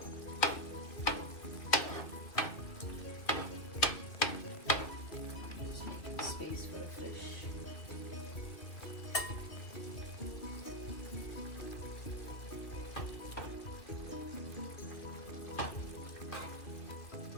Just making space for the fish.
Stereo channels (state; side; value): late; right; 2.8 ms